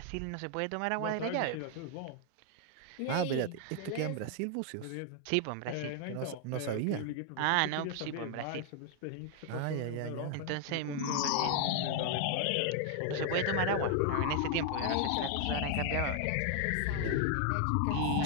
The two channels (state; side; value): different; both; correlation 0.00